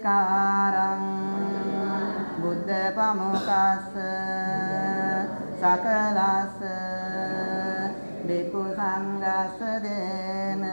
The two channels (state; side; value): inverted; both; correlation -1.00